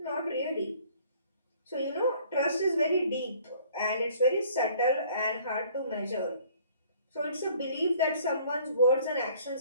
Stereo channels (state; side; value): inverted; both; correlation -0.55